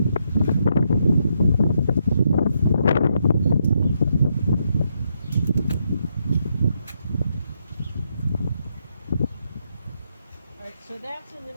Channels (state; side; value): inverted; both; correlation -0.78